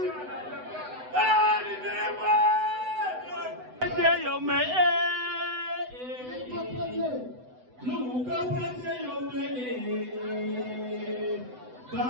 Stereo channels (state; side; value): late; left; 8.0 ms